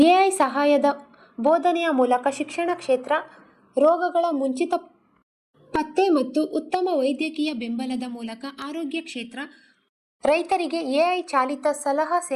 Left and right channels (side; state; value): both; identical; correlation 1.00